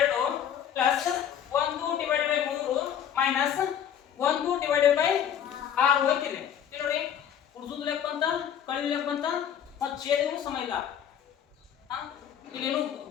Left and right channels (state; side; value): quieter; right; 9.2 dB